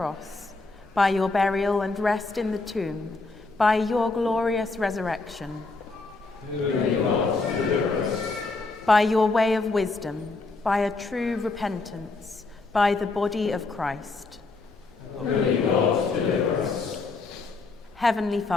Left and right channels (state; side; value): quieter; right; 3.6 dB